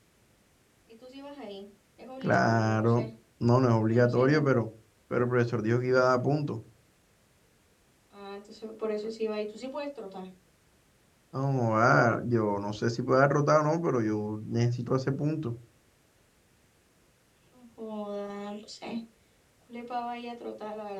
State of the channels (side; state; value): both; identical; correlation 1.00